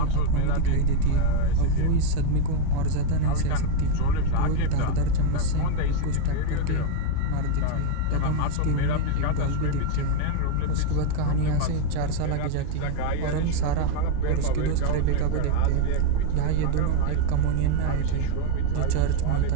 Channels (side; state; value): both; different; correlation 0.01